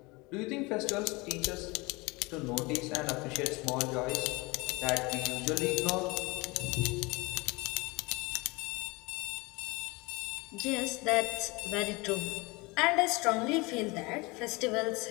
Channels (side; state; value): right; quieter; 25.1 dB